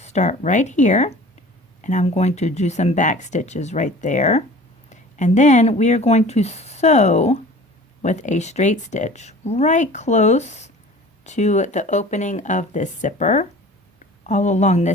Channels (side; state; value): both; normal; correlation 0.43